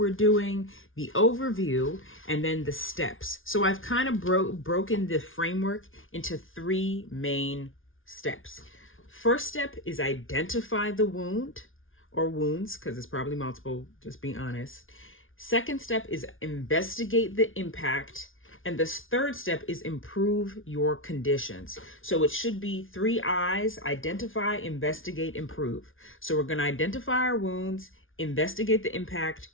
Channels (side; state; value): right; late; 0.58 ms